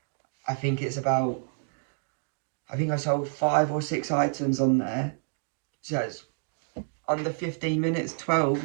I think it's about, I think I sold 5 or 6 items on there. So it's under 15 minutes, 12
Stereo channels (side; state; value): left; silent; 59 dB below the other